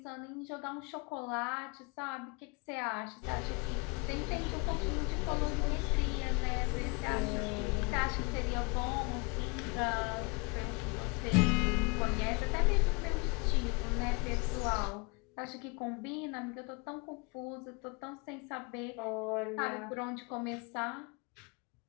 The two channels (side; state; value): right; quieter; 30.4 dB